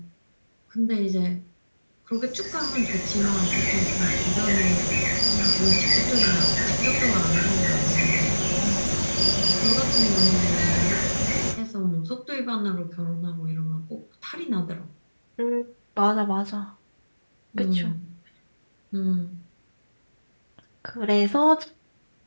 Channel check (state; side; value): inverted; both; correlation -1.00